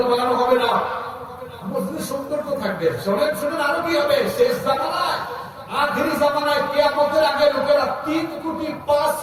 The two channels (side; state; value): both; identical; correlation 1.00